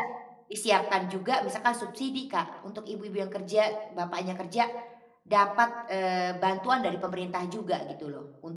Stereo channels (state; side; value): identical; both; correlation 1.00